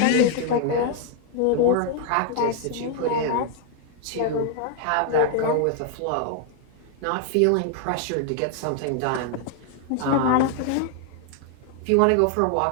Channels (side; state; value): both; different; correlation 0.00